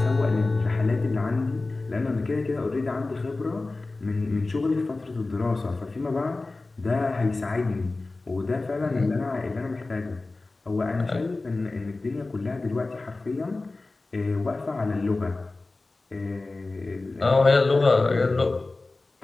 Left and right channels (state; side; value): quieter; right; 3.3 dB